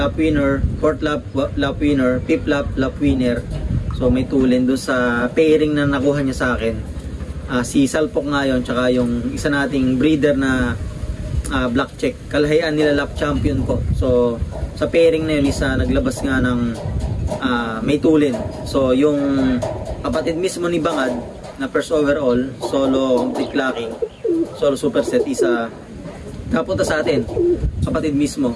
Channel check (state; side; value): identical; both; correlation 1.00